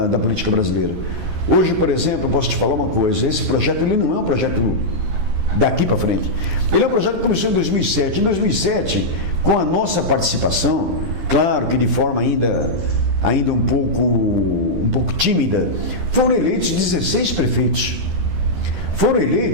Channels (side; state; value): left; late; 12 ms